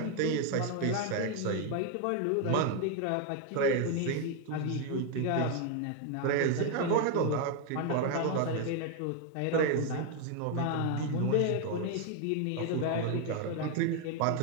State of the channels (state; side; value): different; both; correlation 0.01